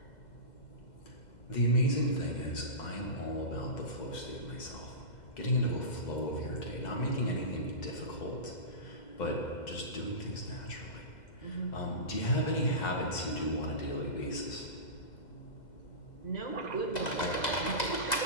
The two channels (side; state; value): right; late; 2.0 ms